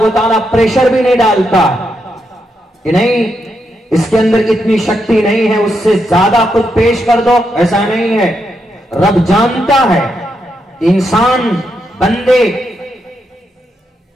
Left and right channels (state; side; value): normal; both; correlation 0.82